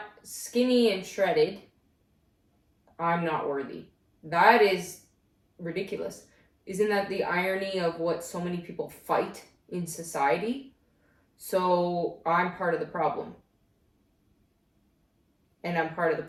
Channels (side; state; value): both; identical; correlation 1.00